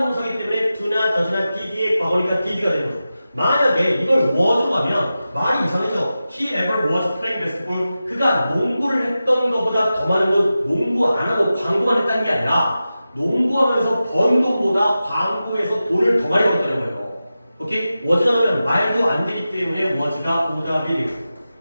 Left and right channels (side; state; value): both; inverted; correlation -0.93